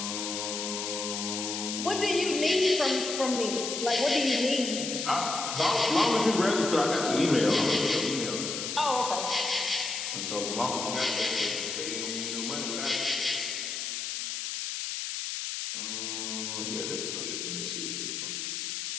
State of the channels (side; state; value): left; noise; hiss, 3 dB below the sound